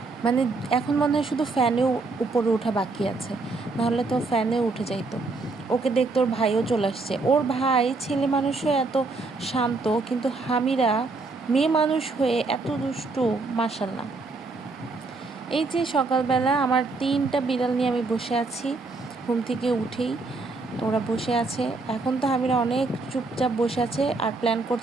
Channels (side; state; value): left; quieter; 3.7 dB